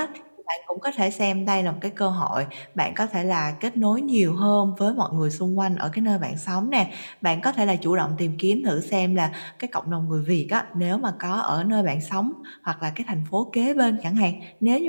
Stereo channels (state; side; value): inverted; both; correlation -1.00